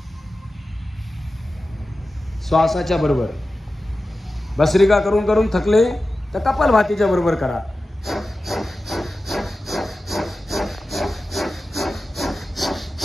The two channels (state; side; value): normal; both; correlation 0.94